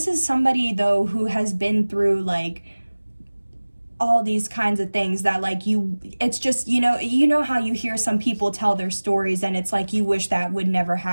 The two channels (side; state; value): both; inverted; correlation -1.00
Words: is somebody though who has been through like all these kinds of things that like it's just, you know how you hear some people tell their stories and it's like you wish that would never